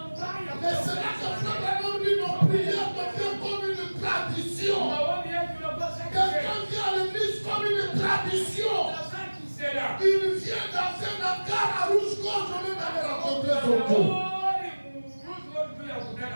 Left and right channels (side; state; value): both; inverted; correlation -1.00